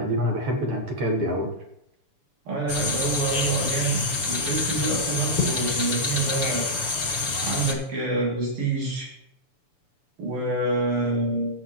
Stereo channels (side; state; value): left; late; 7.0 ms